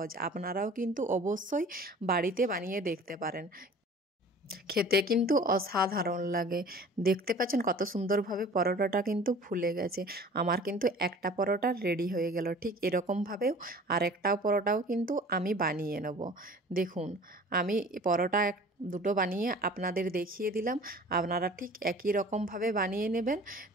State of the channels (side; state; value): both; normal; correlation 0.45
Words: আপনারাও কিন্তু অবশ্যই বাড়িতে বানিয়ে দেখতে পারেন। খেতে কিন্তু অসাধারণ লাগে। দেখতে পাচ্ছেন কত সুন্দরভাবে পরোটাটা কিন্তু ফুলে গেছে। আমার কিন্তু একটা পরোটা রেডি হয়ে গেল। ঠিক এরকমভাবেও আরেকটাও পরোটাও কিন্তু আমি বানিয়ে নেব। দেখুন আমি পরোটা দুটো বানিয়ে আপনাদের দেখিয়ে দিলাম। আপনারা ঠিক একই রকমভাবে বানিয়ে নেবেন।